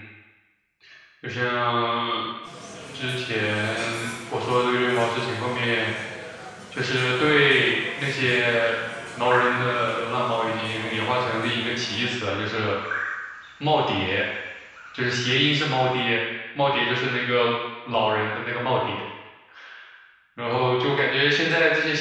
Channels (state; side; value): identical; both; correlation 1.00